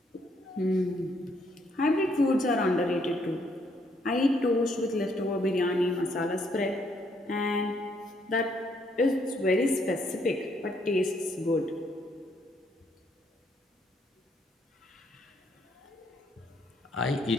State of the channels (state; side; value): normal; both; correlation 0.71